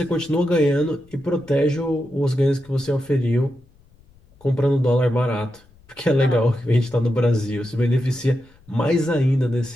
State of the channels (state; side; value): noise; left; rumble, 29 dB below the sound